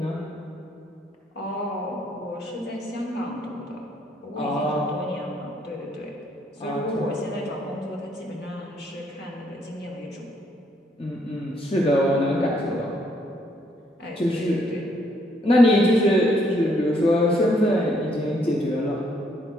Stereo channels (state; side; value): normal; both; correlation 0.70